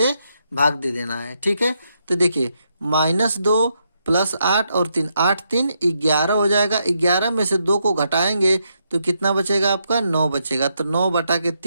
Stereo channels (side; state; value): both; inverted; correlation -0.80